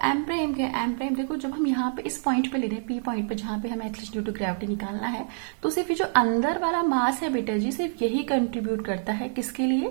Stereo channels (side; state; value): left; silent; 58 dB below the other